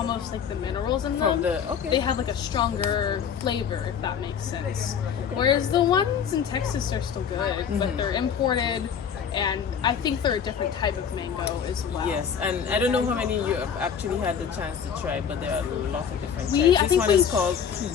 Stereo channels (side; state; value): right; quieter; 7.5 dB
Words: like the minerals in them. They have like a stronger flavor, if that makes sense. Whereas the ones in Texas are still good, but they're imported. And I think they're a different type of mango as well. Yes, and I don't know how many you have actually had the chance to try, but there are a lot of different types. I This think one is called